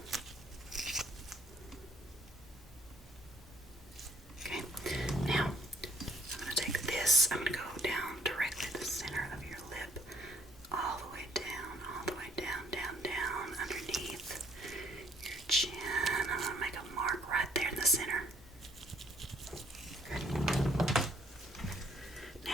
Okay, now I'm going to take this, I'm going to go down directly to the center of your lip, all the way down, underneath your chin. I'm going to make a mark right there in the center. Good.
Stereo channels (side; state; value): both; normal; correlation 0.64